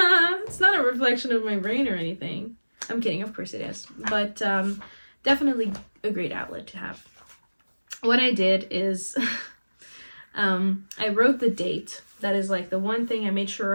not a reflection of my brain or anything. I'm kidding, of course it is. But definitely a great outlet to have. What I did is I wrote the date. That is like the one thing I made sure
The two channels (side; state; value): both; inverted; correlation -1.00